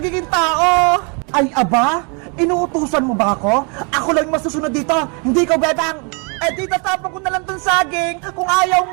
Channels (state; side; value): quieter; left; 35.0 dB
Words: tao. Ay, aba? Inuutusan mo ba ako? Ako lang yung masusunod dito. Hindi ko, Bebang. Eh, di tatapon ko na lang tong saging kung ayaw